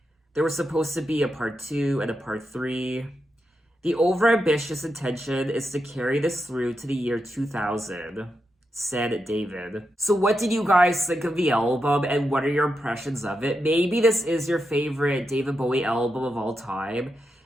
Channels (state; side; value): normal; both; correlation 0.86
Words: There was supposed to be a part 2 and a part 3. The overambitious intention is to carry this through to the year 2000, said David. So what did you guys think of the album, and what are your impressions of it? Maybe this is your favorite David Bowie album of all time.